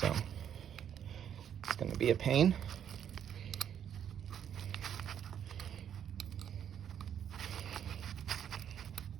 it's gonna be a pain.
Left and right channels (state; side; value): quieter; left; 9.2 dB